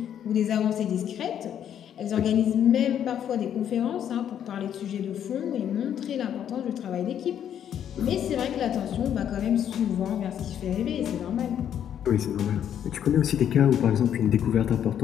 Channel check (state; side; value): quieter; right; 9.6 dB